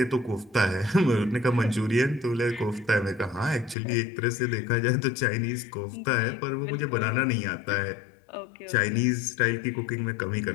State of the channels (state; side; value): drops out; right; at 3.8 s